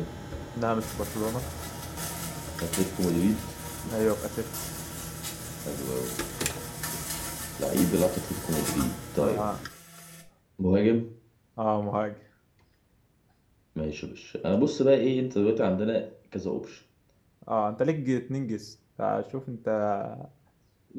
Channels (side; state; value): both; identical; correlation 1.00